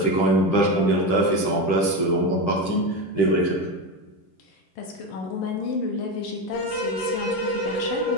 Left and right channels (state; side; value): late; right; 10 ms